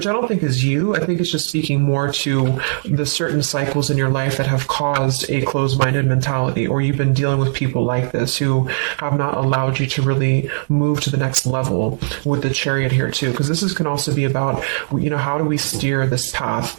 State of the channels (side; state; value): left; silent; digital silence